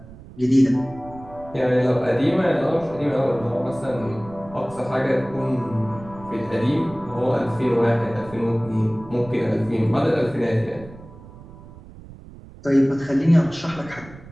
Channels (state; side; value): noise; right; rumble, 18 dB below the sound